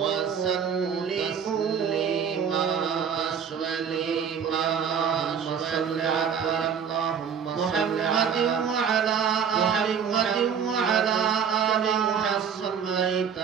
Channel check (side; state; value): left; quieter; 7.3 dB